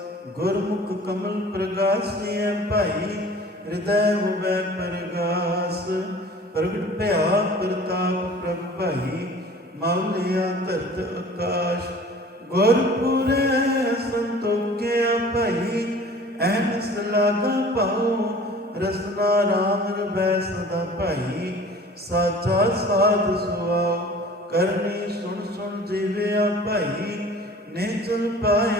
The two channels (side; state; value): both; normal; correlation 0.45